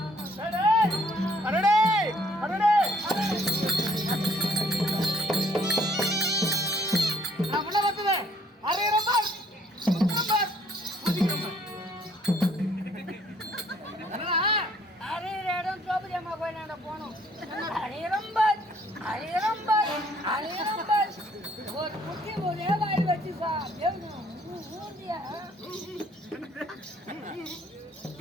போனோம் ஒரு குட்டி ஒரே வாய் வச்சு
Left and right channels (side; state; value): both; normal; correlation 0.62